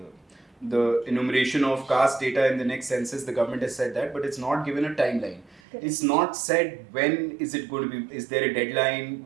the enumeration of caste data in the next census. The government has said that, but it's not given a timeline. It's not said when is it going to be, is there a deadline,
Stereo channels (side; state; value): left; drops out; at 5.6 s